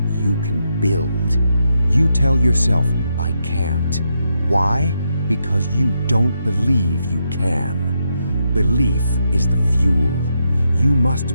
you can build. You tell yourself, I can't. Why? Because you don't believe you can. Belief is the fuel. You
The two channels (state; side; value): inverted; both; correlation -0.82